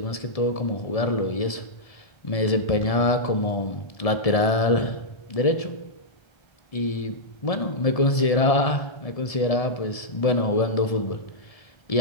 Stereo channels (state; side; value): late; right; 1.7 ms